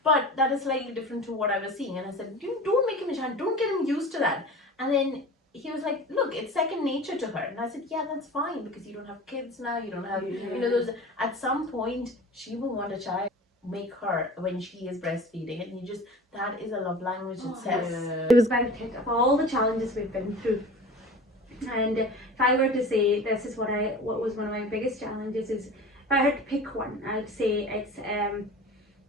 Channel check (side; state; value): both; normal; correlation 0.37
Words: but that is slightly different to what I was seeing. And I said, don't make him a chai. Don't get him used to that. And then he was like, look, it's second nature to her. And I said, yeah, that's fine because you don't have kids now. You don't have, you know, those. At some point, she will want a chai. Make her when she is breastfeeding, and that is a love language itself. It was about it of all the challenges we've been through. And if I were to say this is what was one of my biggest challenges, is if I had to pick one, I'd say